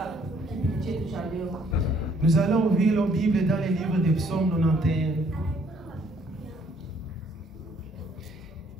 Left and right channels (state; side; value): normal; both; correlation 0.64